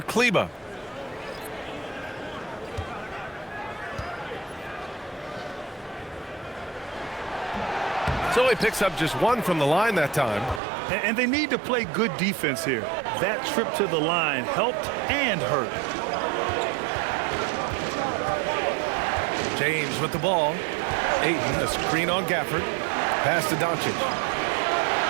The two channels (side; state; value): left; drops out; at 10.6 s